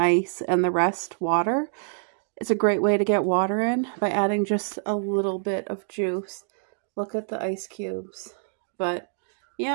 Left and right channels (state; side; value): silent; left; digital silence